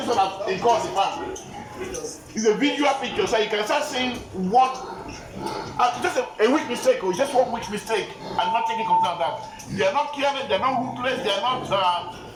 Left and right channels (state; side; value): identical; both; correlation 1.00